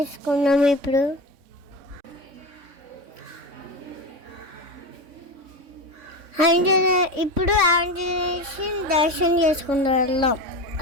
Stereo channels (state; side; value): late; left; 3.6 ms